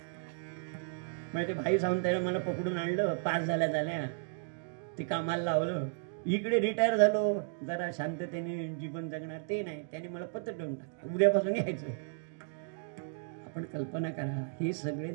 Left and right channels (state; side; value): silent; left; digital silence